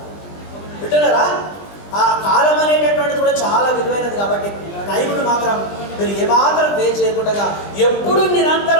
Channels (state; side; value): late; right; 20 ms